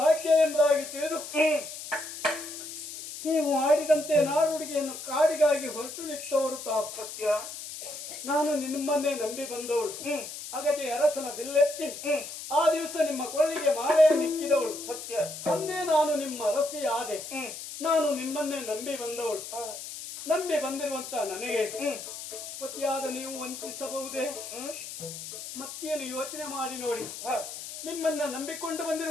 ಎಂಬುದಾಗಿ ತಿಳಿದು ನೀವು ಆಡಿದಂತೆ ನಾರುಡಿಗೆಯನ್ನು ಕಾಡಿಗಾಗಿ ಹೊರಟು ನಿಂತವರು ತಾವು. ಸತ್ಯ. ನಾನು ನಿಮ್ಮನ್ನೇ ನಂಬಿ ಬಂದವಳು. ಅಗಜೆ ಅರಸನ ಬಿಲ್ಲೆತ್ತಿ ಆ ದಿವಸ ನಿಮ್ಮ ಕೊಳ್ಳಿಗೆ ಮಾಲೆಯನ್ನಿಕ್ಕಿದವಳು. ಸತ್ಯ. ಅಂದೇ ನಾನು ನಿಮ್ಮ ಅರಸಿ ಆದೆ. ನಾನು ನಿಮ್ಮನ್ನೇ ನಂಬಿ ಬಂದವಳು. ನಂಬಿ ಬಂದಿರುವಂತ ನನಗೆ ಪತಿಯಾದ ನೀವು ವಂಚಿಸಬಹುದೇ? ಮತ್ತೇನು ಯೋಚನೆ ಮಾಡಿ ನೋಡಿ. ನಿಮ್ಮನ್ನ ನಂಬಿಕೊಂಡು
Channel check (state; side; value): noise; left; hiss, 10 dB below the sound